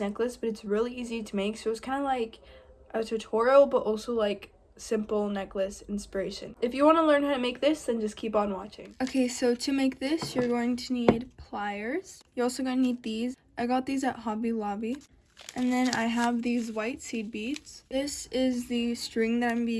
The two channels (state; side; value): identical; both; correlation 1.00